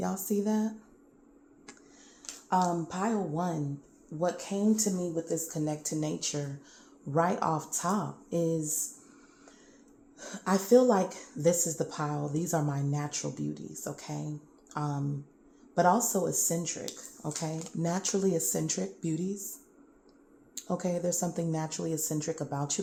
see that? Pile 1, what came to me with this connect to nature right off top is I feel like this is the pile. These are my natural beauties, okay? But also eccentric, okay? Naturally eccentric beauties. Okay, there's something naturally eccentric about you.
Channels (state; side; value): identical; both; correlation 1.00